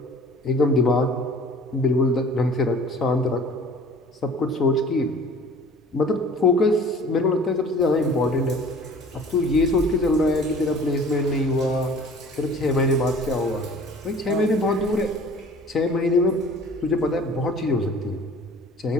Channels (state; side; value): normal; both; correlation 0.47